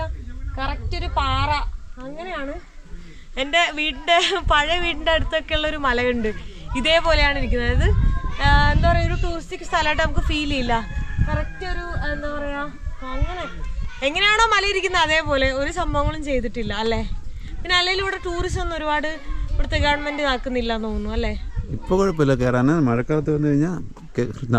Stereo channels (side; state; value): both; identical; correlation 1.00